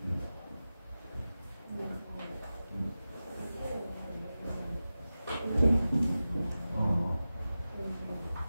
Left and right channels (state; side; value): inverted; both; correlation -0.95